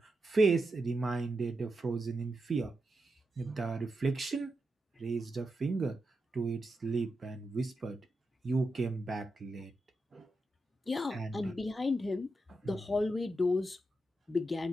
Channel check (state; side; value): normal; both; correlation 0.87